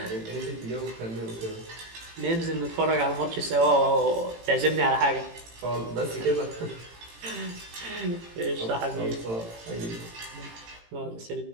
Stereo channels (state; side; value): late; left; 18 ms